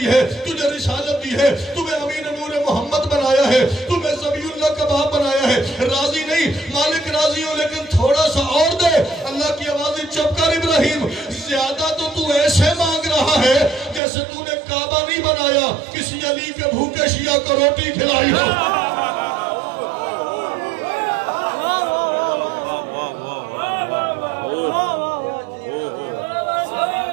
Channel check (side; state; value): left; drops out; at 14.0 s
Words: ہے, تجھے رسالت دی ہے, تمہیں امین نور محمد بنایا ہے, تمہیں ذبیح اللہ کا باپ بنایا ہے. راضی نہیں, مالک راضی ہو لیکن تھوڑا سا اور دے. اللہ کی آوازیں چپ کر ابراہیم, زیادہ تو ایسے مانگ رہا ہے جیسے تو نے کعبہ نہیں بنایا, کسی علی کے بھوکے شیعہ کو روٹی کھلائی ہو.